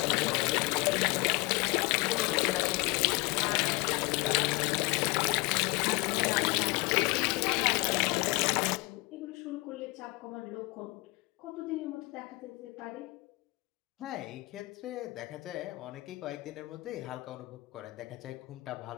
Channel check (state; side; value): quieter; right; 24.5 dB